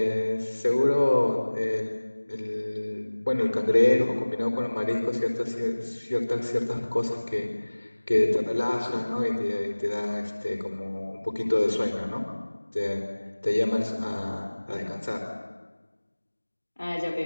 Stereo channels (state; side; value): inverted; both; correlation -1.00